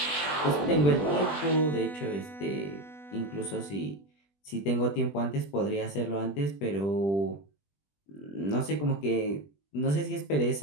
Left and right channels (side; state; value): right; late; 20 ms